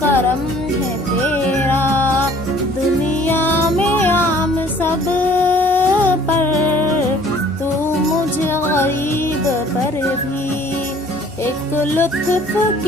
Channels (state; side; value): normal; both; correlation 0.54